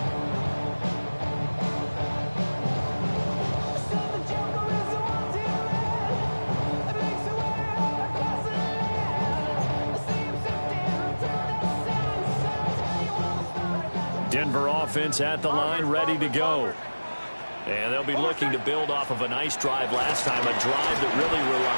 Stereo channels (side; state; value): both; inverted; correlation -1.00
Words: Denver offense at the line, ready to go. And they'll be looking to build off of a nice drive last time, a drive that really